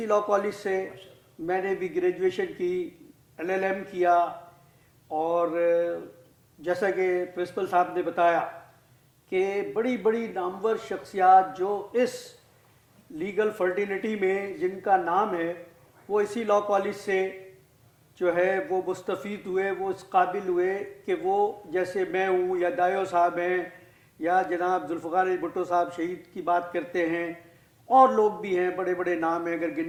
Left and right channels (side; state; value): both; identical; correlation 1.00